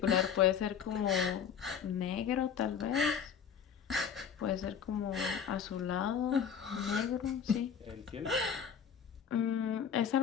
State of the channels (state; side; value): quieter; right; 7.6 dB